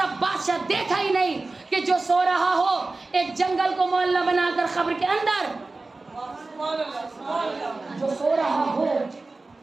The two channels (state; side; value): quieter; left; 3.4 dB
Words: بادشاہ دیکھا ہی نہیں کہ جو سو رہا ہو ایک جنگل کو محلہ بنا کر قبر کے اندر، جو سو رہا ہو